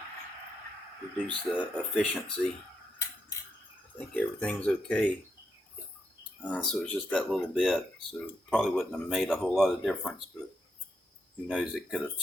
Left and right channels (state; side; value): normal; both; correlation 0.82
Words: reduce the efficiency. I think everything's okay. So it's just that little bit. So probably wouldn't have made a whole lot of difference, but who knows, it could have